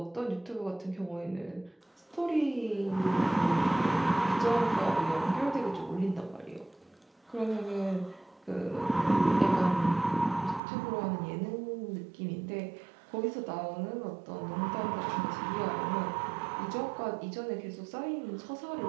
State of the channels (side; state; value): left; drops out; at 10.6 s